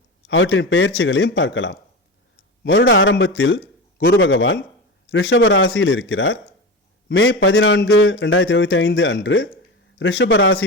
அவற்றின் பெயர்ச்சிகளையும் பார்க்கலாம். வருட ஆரம்பத்தில் குரு பகவான் ரிஷப ராசியில் இருக்கிறார். மே 14, 2025 அன்று ரிஷப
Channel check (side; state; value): both; normal; correlation 0.24